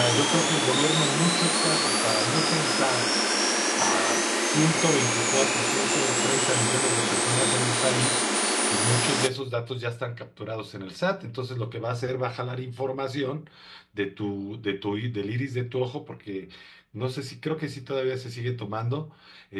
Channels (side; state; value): both; identical; correlation 1.00